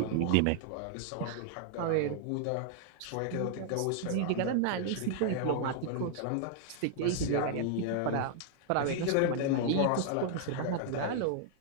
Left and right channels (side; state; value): both; different; correlation 0.00